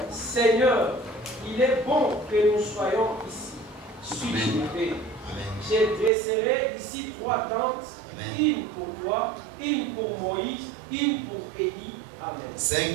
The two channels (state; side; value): drops out; left; at 6.1 s